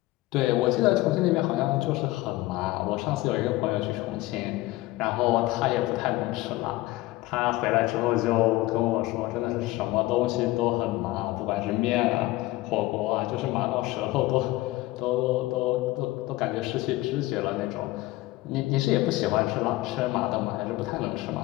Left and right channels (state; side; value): quieter; right; 18.6 dB